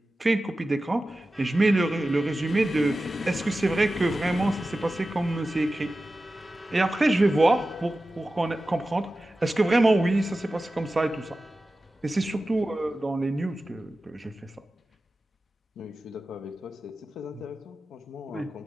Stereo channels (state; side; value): normal; both; correlation 0.95